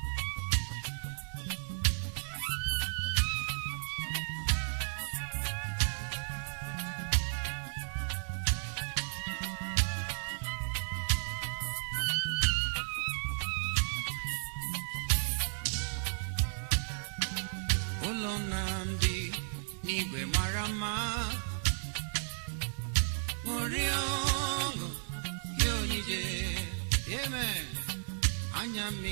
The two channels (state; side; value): silent; left; 55 dB below the other